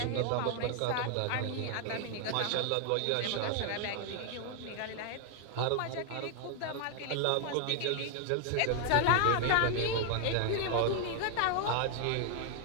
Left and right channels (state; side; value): different; both; correlation 0.00